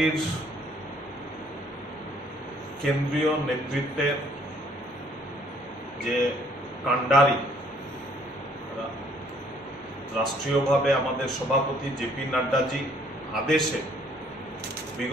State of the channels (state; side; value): normal; both; correlation 0.62